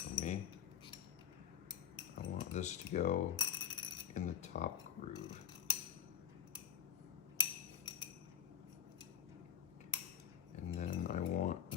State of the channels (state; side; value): quieter; right; 9.0 dB